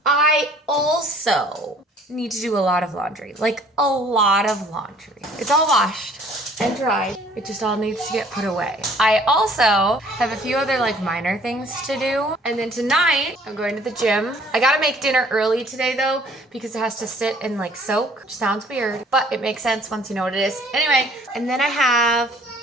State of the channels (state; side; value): normal; both; correlation 0.56